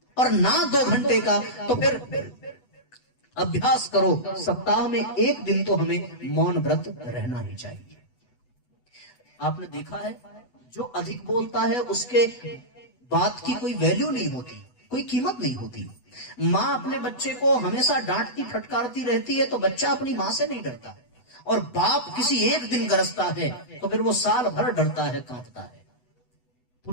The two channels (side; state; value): right; late; 8.1 ms